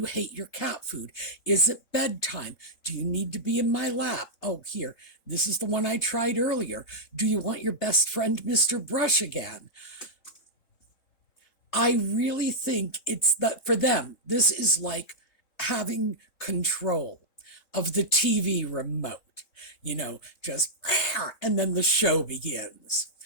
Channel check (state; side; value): late; right; 3.7 ms